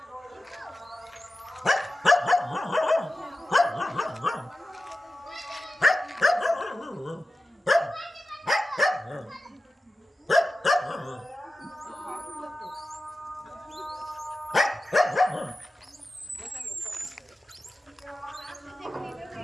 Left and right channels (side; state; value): both; normal; correlation 0.94